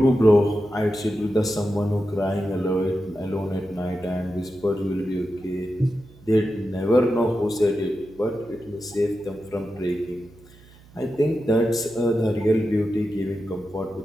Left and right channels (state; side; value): noise; right; hum, 24 dB below the sound